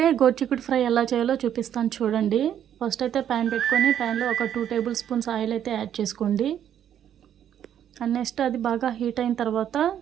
గోర్చిక్కుడు ఫ్రై ఎలా చేయాలో చూపిస్తాను, చూడండి. ఫస్ట్ అయితే ప్యాన్ పెట్టుకొని ప్యాన్లో ఒక 2 టేబుల్ స్పూన్స్ ఆయిల్ అయితే యాడ్ చేసుకోండి. అండ్ నెక్స్ట్ అది బాగా హీట్ అయిన తర్వాత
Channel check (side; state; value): left; quieter; 10.0 dB